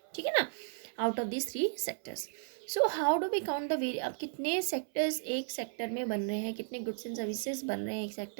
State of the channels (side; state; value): left; silent; 55 dB below the other